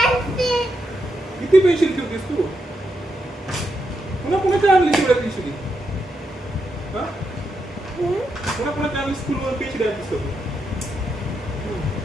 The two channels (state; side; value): normal; both; correlation 0.83